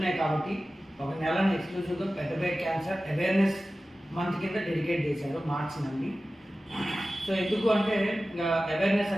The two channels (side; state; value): both; normal; correlation 0.96